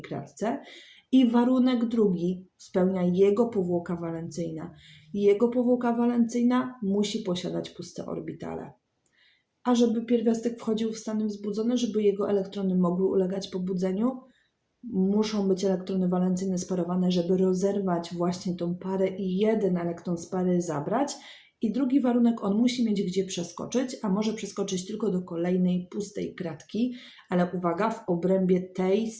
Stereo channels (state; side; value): identical; both; correlation 1.00